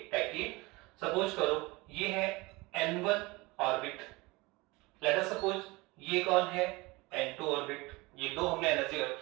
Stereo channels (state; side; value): quieter; left; 23.4 dB